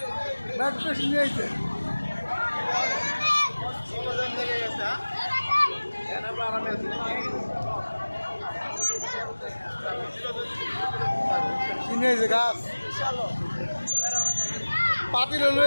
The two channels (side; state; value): both; inverted; correlation -1.00